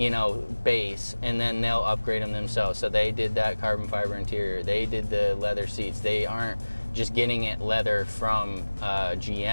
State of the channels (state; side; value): inverted; both; correlation -1.00